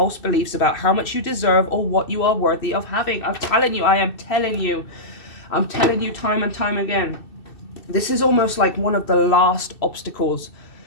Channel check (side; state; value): right; late; 2.6 ms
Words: beliefs about how much you deserve or what you are worthy of having. I'm telling you, I am telling you. I'm telling you time and time again, this is almost like one of the last obstacles